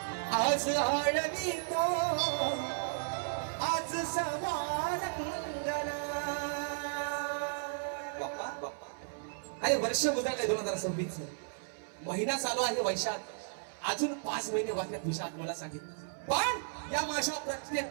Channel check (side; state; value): left; silent; 55 dB below the other